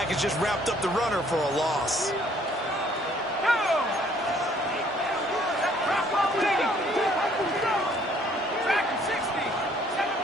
just wrapped up the runner for a loss.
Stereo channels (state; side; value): normal; both; correlation 0.61